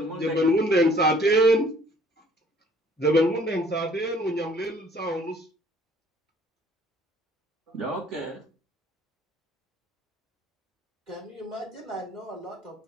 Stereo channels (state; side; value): normal; both; correlation 0.57